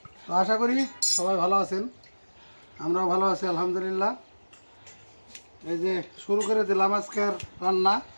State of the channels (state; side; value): inverted; both; correlation -1.00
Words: তো আশা করি সবাই ভালো আছেন, আমরাও ভালো আছি আলহামদুলিল্লাহ। এই যে শুরু করে দিলাম আজকের রান্না